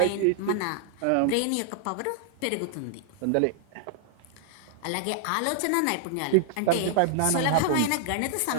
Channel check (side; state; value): both; different; correlation 0.00